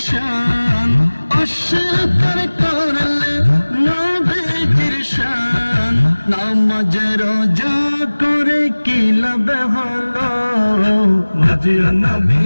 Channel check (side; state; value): both; inverted; correlation -1.00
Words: শান অস্বীকার করলে নবীর শান নামাজ রোজা করে কি লাভ হলো মাঝে নবী